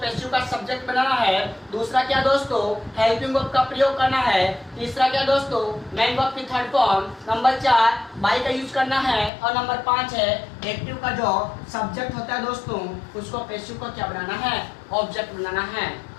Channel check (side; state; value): right; drops out; at 9.3 s